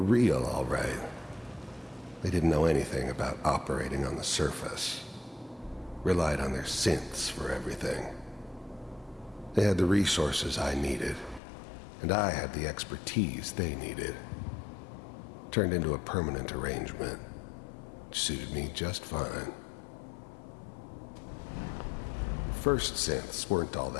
all right. They didn't know anything about operating on the surface. Relied on their synths for everything. They had the resources I needed, and I had the expertise they needed. Turned into a permanent arrangement. Suited me just fine. First synths weren't all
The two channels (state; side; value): drops out; right; at 11.4 s